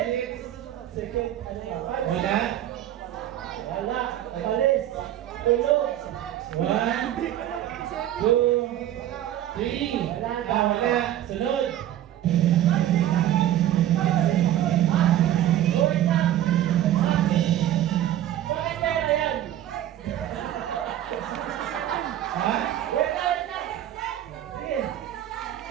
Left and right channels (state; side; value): quieter; left; 12.2 dB